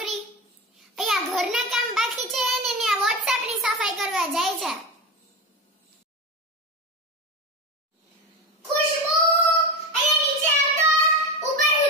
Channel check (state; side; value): normal; both; correlation 0.22